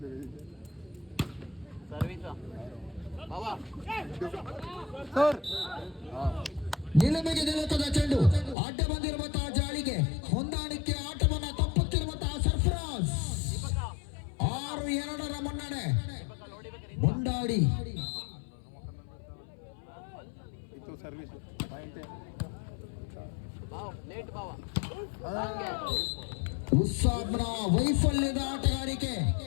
ನಿಲುಮೆಗೆ ನಿಲುಕದ ಚೆಂಡು ಅಡ್ಡ ಬಂದಿರುವಂತಹ ಜಾಳಿಗೆ ಹೊಂದಾಣಿಕೆ ಆಟವನ್ನ ತಪ್ಪುತ್ತಿರುವಂತಹ ಸರ್ಫರಾಜ್. 6-2 ಮುನ್ನಡೆ ಮುಂಡಾಡಿ. ಉಸ್ಸಾಬ್ನ ವೈಫಲ್ಯದ ಆಟಗಾರಿಕೆ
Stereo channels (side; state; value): right; drops out; at 8.6 s